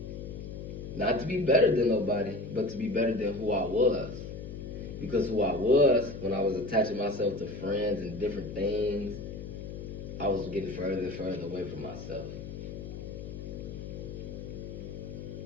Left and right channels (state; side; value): noise; left; hum, 9 dB below the sound